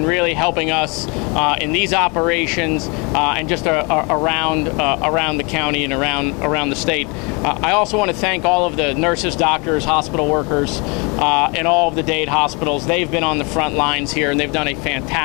really helping us in these operations and just around the county and around the state. I also want to thank all of the nurses, doctors, hospital workers, and all of the Dade hospitals. They've been on the front lines here, and they've done a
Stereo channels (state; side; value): quieter; right; 30.6 dB